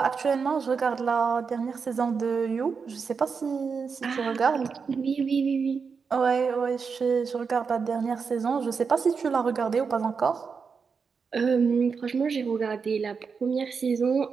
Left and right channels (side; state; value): left; quieter; 5.6 dB